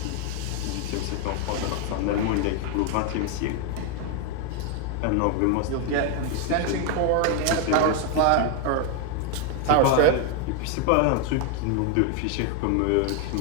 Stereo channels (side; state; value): both; different; correlation 0.01